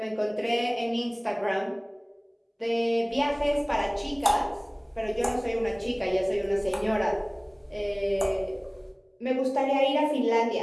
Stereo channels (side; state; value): both; identical; correlation 1.00